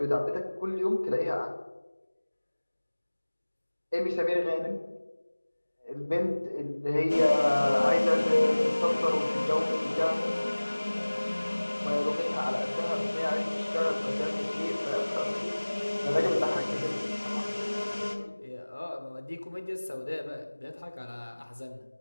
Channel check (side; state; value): both; inverted; correlation -1.00